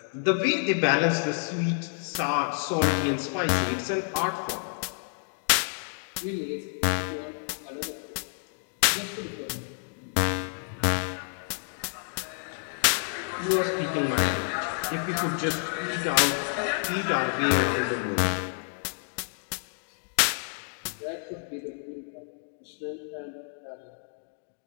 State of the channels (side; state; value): right; silent; 58 dB below the other